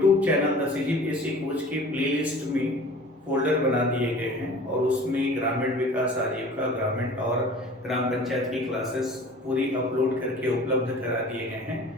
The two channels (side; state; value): both; normal; correlation 0.44